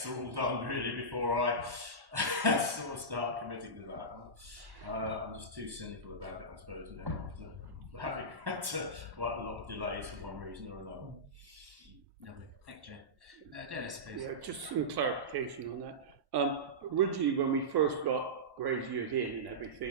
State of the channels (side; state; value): left; late; 1.1 ms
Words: are all done really before I sort of start committing to that. I'm just too cynical about it, I suppose, now after having had quite a lot of delays for one reason or another. Lovely, thank you, Dennis, please. Yeah, just some clarification on that. Originally, when we first got Graziers in and